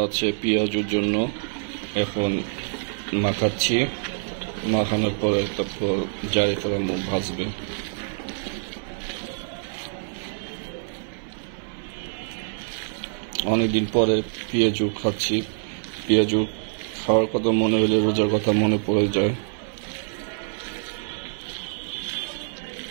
আছে পেঁয়াজুর জন্য। এখন মাখাচ্ছি, মাখানোর পরে তারপর জারিফের আম্মু ভাজবে। অনেকদিন পরে পেঁয়াজু খাচ্ছি। পেঁয়াজু খাওয়ার কথা মনে হলে রোজার কথা মনে পড়ে যায়।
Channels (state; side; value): silent; left; digital silence